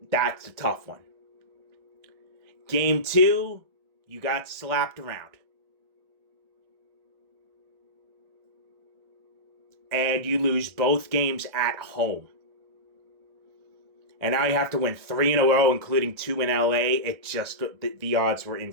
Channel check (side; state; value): left; late; 1.7 ms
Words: That's a tough one. Game 2, you got slapped around. And you lose both games at home. And now you have to win 3 in a row, including 2 in LA. It just, the odds were